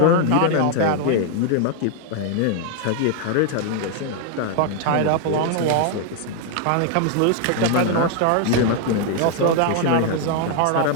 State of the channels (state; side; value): different; both; correlation 0.00